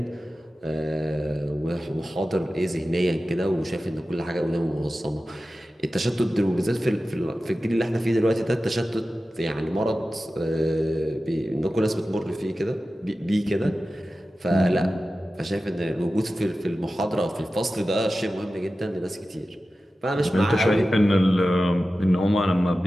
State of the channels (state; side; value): normal; both; correlation 0.94